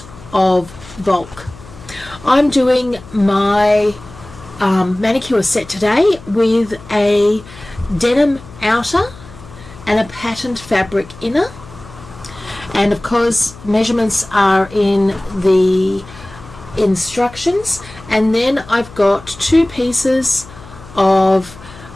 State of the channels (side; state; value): left; noise; hum, 19 dB below the sound